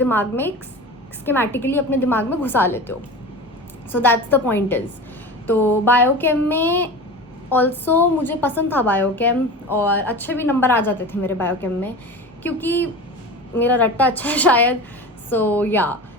में स्कीमेटिकली अपने दिमाग में घुसा लेते हो। So that's the point is. तो बायोकेम में ऑल्सो मुझे पसंद था बायोकेम, और अच्छे भी नंबर आ जाते थे मेरे बायोकेम में, क्योंकि मेरा रट्टा अच्छा है शायद। सो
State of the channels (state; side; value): normal; both; correlation 0.31